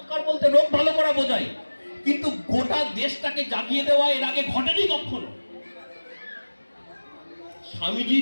বলতে রোগ ভালো করা বোঝাই, কিন্তু গোটা দেশটাকে জাগিয়ে দেওয়া এর আগে ঘটেনি কখনো।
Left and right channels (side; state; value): both; inverted; correlation -1.00